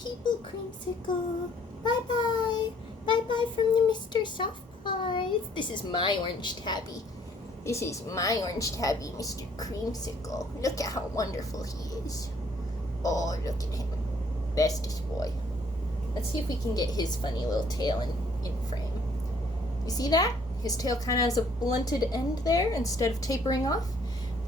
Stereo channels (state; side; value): normal; both; correlation 0.62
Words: people, Creamsicle. Bye-bye. Bye-bye from the Mr. Soft Pies. This is my orange tabby. This is my orange tabby, Mr. Creamsicle. Look at how wonderful he is. Oh, look at him. Bestest boy. Let's see if we can get his funny little tail in frame. You see that? His tail kind of has a blunted end there instead of tapering off.